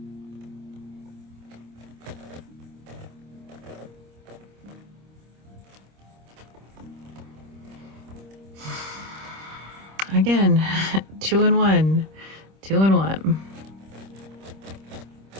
Again, 2 and 1, 2 and 1.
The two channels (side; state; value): left; late; 26 ms